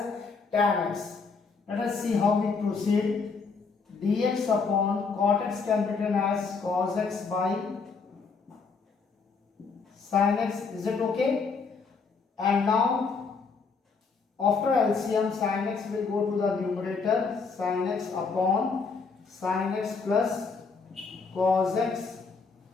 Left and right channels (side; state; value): right; quieter; 4.9 dB